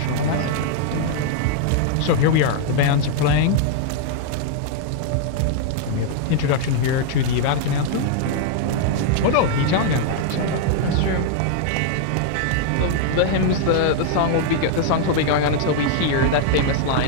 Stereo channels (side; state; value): both; different; correlation 0.00